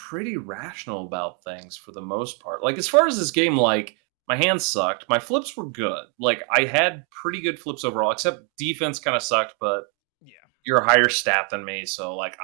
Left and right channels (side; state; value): left; quieter; 38.6 dB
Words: pretty rational about things for the most part. Like, as far as this game, like, my hands sucked. My flips were good. Like, I had pretty good flips overall, except defense kind of sucked, but you're a higher stat than me, so, like,